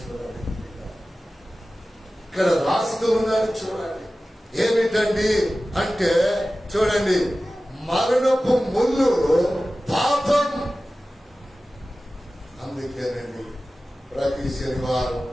చూడండి, ఇక్కడ రాస్తూ ఉన్నారు చూడండి. ఏమిటండి అంటే చూడండి, మరణపు ముళ్ళు పాపం. అందుకేనండి ప్రతి శనివారం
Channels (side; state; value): both; normal; correlation 0.96